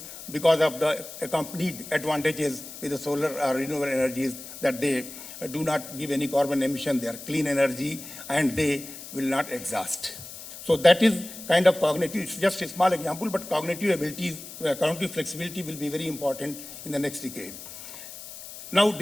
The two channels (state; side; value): noise; left; hiss, 13 dB below the sound